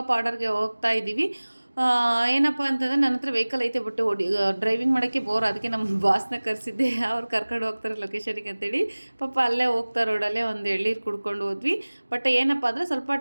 ಆರ್ಡರ್ಗೆ ಹೋಗ್ತಾ ಇದ್ದೀವಿ. ಏನಪ್ಪ ಅಂತಂದರೆ ನನ್ನ ಹತ್ರ ವೆಹಿಕಲ್ ಐತೆ, ಬಟ್ ಡ್ರೈವಿಂಗ್ ಮಾಡೋಕ್ಕೆ ಬೋರ್. ಅದಕ್ಕೆ ನಮ್ಮ ಬಾಸ್ನ ಕರೆಸಿದ್ದೆ, ಅವ್ರು ಕರ್ಕೊಂಡು ಹೋಗ್ತಾರೆ ಲೊಕೇಶನಿಗೆ ಅಂತೇಳಿ. ಪಾಪ ಅಲ್ಲೇ ಹೋಗ್ತಾ ರೋಡಲ್ಲೇ ಒಂದು ಎಳ್ಳೀರು ಕುಡ್ಕೊಂಡು ಹೋದ್ವಿ. ಬಟ್ ಏನಪ್ಪ ಅಂದರೆ ಸ್ವಲ್ಪ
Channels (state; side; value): inverted; both; correlation -1.00